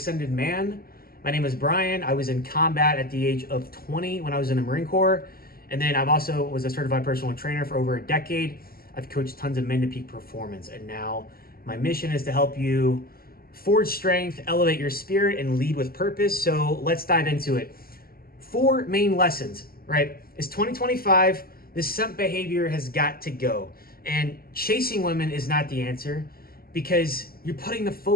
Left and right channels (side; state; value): right; late; 0.43 ms